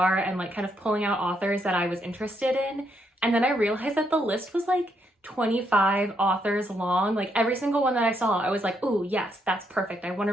and kind of pulling out authors that I was interested in. And then I realized that the list was 25 authors long. Every single one that I saw, I was like, oh yes, that's perfect. I want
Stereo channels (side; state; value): both; normal; correlation 0.76